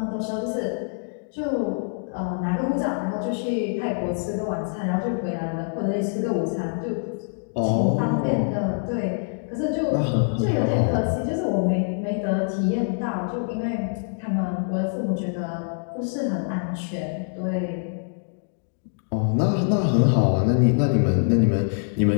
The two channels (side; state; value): right; silent; digital silence